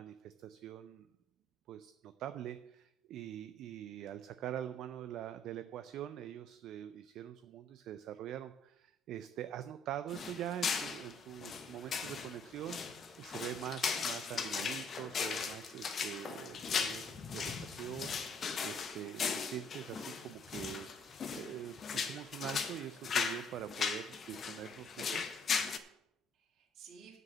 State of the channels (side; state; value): both; normal; correlation 0.63